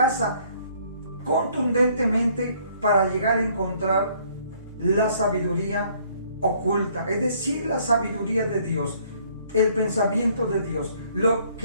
contundentemente para llegar a encontrar la sabiduría oculta, es decir, la sabiduría de Dios, el pensamiento de Dios, lo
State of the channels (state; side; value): inverted; both; correlation -0.62